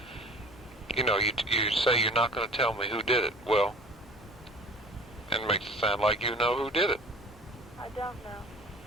You know, you say you're not going to tell me who did it. Well, it makes it sound like you know who did it. I don't know.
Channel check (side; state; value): both; normal; correlation 0.45